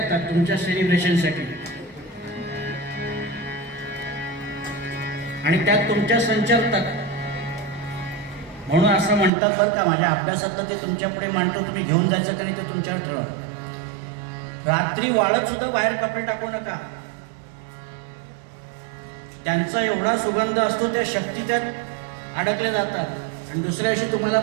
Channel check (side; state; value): left; drops out; at 9.3 s